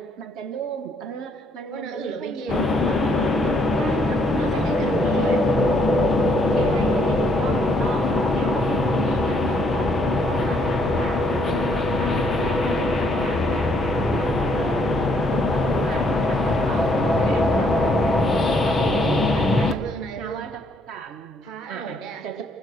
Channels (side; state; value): both; normal; correlation 0.69